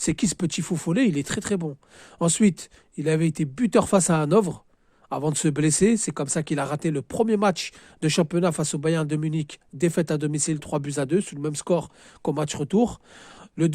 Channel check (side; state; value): both; identical; correlation 1.00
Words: qui ce petit fou follet? Il est très très bon. Ensuite, il avait été buteur face à Hanovre avant de se blesser. C'est comme ça qu'il a raté le premier match de championnat face au Bayern de Munich, défaite à domicile 3-2 sur le même score qu'au match retour. Le